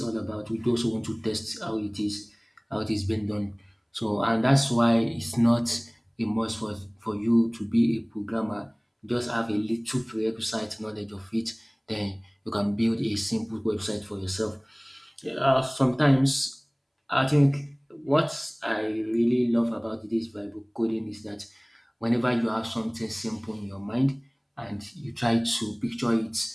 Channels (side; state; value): both; identical; correlation 1.00